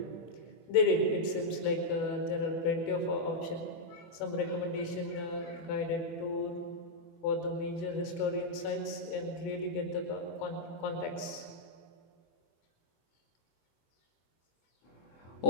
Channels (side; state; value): right; late; 25 ms